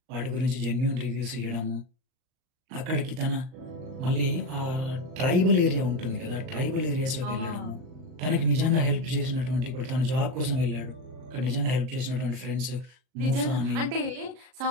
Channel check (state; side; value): late; left; 38 ms